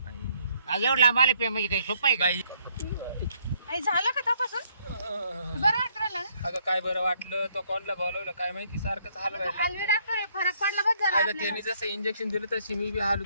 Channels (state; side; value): inverted; both; correlation -0.69